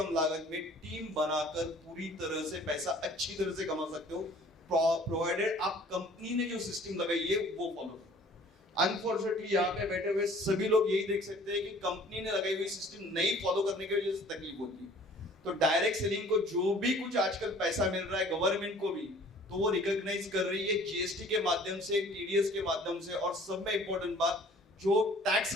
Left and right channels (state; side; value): normal; both; correlation 0.52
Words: लागत में टीम बनाकर पूरी तरह से पैसा अच्छी तरह से कमा सकते हो, प्रोवाइडेड आप कंपनी ने जो सिस्टम लगाई है वो फॉलो करो। अनफॉर्चुनेटली यहाँ पे बैठे हुए सभी लोग यही देख सकते हैं कि कंपनी ने लगाई हुई सिस्टम नहीं फॉलो करने की वजह से तकलीफ होती है। तो डायरेक्ट सेलिंग को जो भी कुछ आजकल पैसा मिल रहा है गवर्नमेंट को भी, तो वो रिकॉग्नाइज कर रही है जीएसटी के माध्यम से, टीडीएस के माध्यम से, और सब में इंपॉर्टेंट बात जो टैक्स